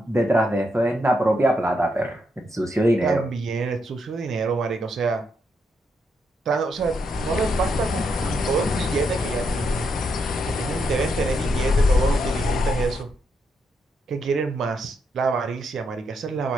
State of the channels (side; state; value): both; normal; correlation 0.80